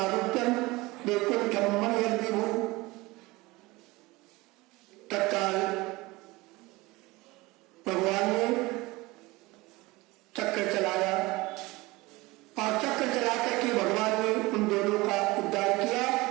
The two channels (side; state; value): left; quieter; 21.7 dB